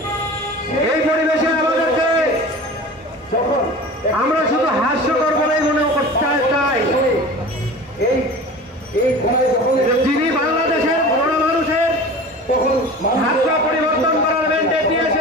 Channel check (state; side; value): normal; both; correlation 0.37